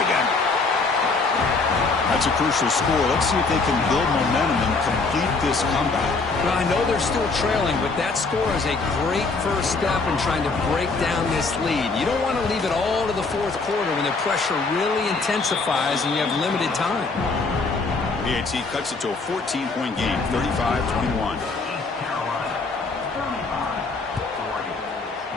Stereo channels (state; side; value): quieter; right; 4.0 dB